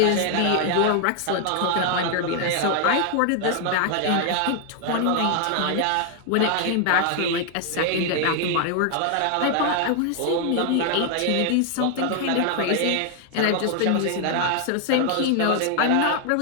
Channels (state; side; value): different; both; correlation 0.00